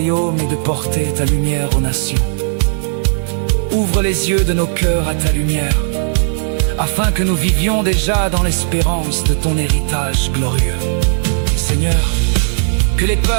et de porter ta lumière aux nations. Ouvre les yeux de nos cœurs à ta lumière, afin que nous vivions déjà dans l'espérance de ton héritage glorieux. Seigneur, que les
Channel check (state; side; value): silent; left; digital silence